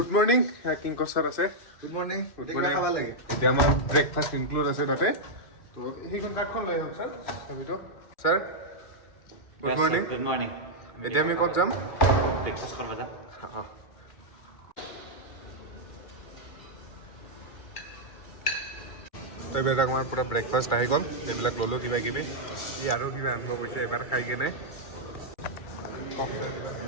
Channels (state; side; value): late; right; 2.4 ms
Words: মৰ্ণিং কিংকৰ ছাৰ আছে গুড মৰ্ণিং morning. খাব লাগে এতিয়া আমাৰ ব্ৰেকফাষ্ট ইনক্লুড আছে তাতে তো সেইখন কাৰ্ডখন লৈ আহক ছাৰ চাবিটো sir good morning good morning এতিয়া আমি ক'ত যাম ব্ৰেকফাষ্ট কৰিব যাম অঁ এইবিলাক আমাৰ পূৰা ব্ৰেকফাষ্ট আহি গ'ল এইবিলাক ল'লোঁ কিবা কিবি ই আৰু কিবা আনিব কৈছে এবাৰ খাই কেনে কওক ছাৰ কিবা